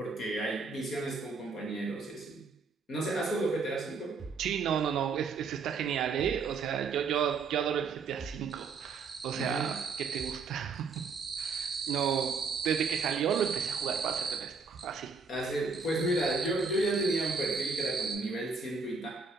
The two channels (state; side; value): quieter; left; 4.8 dB